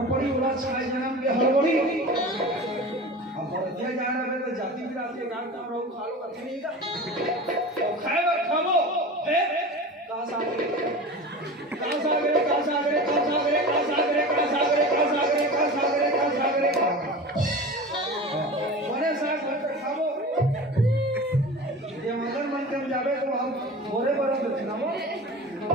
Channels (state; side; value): normal; both; correlation 0.34